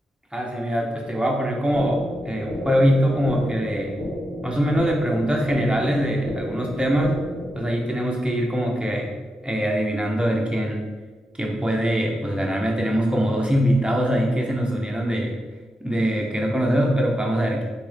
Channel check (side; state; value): both; normal; correlation 0.87